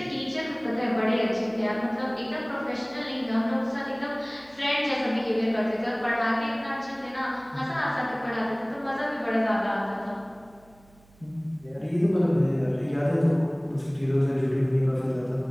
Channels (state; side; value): noise; right; hum, 28 dB below the sound